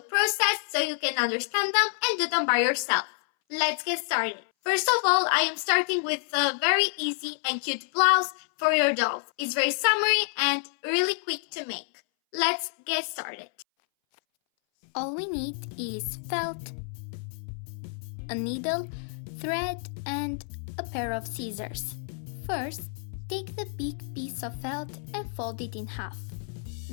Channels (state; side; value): silent; right; 59 dB below the other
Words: process so you can understand them and do them by yourself. Let's get started. First of all, I am starting with a very easy and cute blouse for your dolls. It's very summery and really quick to make. Let's get started. All we need is felt, a needle, thread, and a pair of scissors. First, take the big piece of felt and fold it in half.